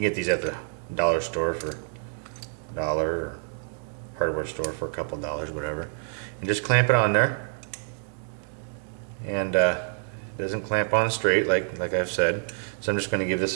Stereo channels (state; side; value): silent; left; 60 dB below the other